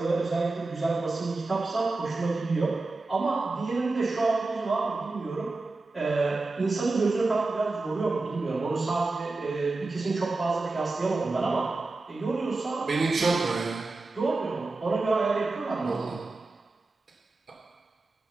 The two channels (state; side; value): quieter; left; 3.4 dB